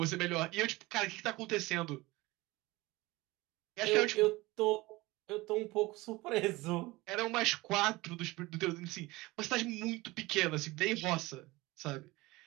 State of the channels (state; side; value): quieter; left; 20.9 dB